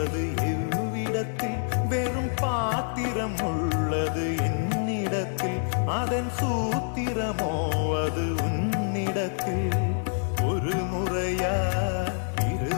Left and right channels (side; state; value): right; silent; 60 dB below the other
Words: எவ்விடத்தில் வெறும் பாத்திரம் உள்ளது என்னிடத்தில் அதன் சூத்திரமோ அது உன்னிடத்தில் ஒரு முறையா